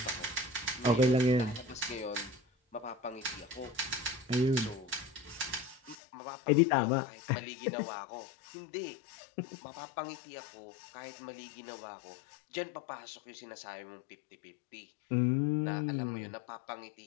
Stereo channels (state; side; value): drops out; right; at 6.0 s